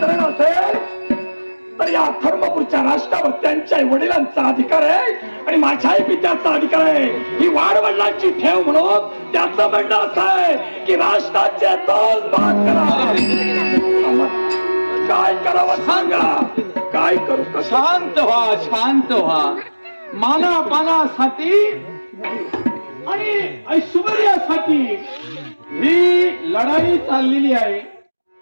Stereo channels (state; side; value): inverted; both; correlation -1.00